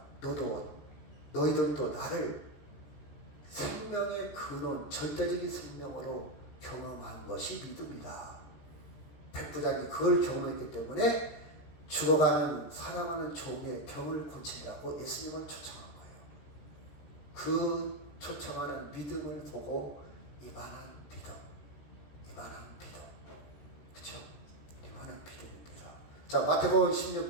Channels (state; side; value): late; right; 13 ms